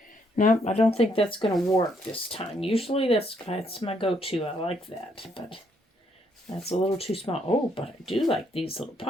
No, I don't think that's going to work this time. Usually that's my go-to. I like that, but that's a little too small. Oh, but I do like these little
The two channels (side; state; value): both; normal; correlation 0.72